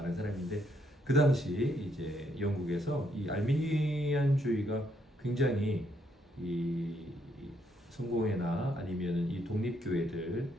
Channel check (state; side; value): normal; both; correlation 0.74